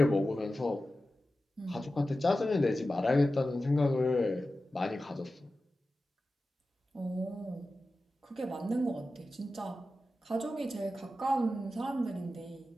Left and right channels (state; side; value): normal; both; correlation 0.94